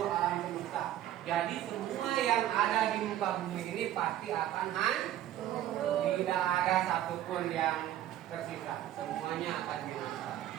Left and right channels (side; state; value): left; quieter; 12.5 dB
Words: alam semesta. Jadi semua yang ada di muka bumi ini pasti akan hancur. Tidak ada satupun yang tersisa, semuanya akan binasa.